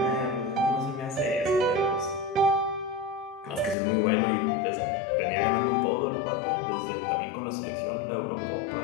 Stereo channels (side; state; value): right; drops out; at 3.8 s